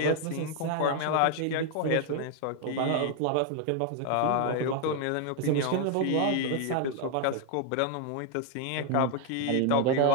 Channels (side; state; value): both; different; correlation 0.01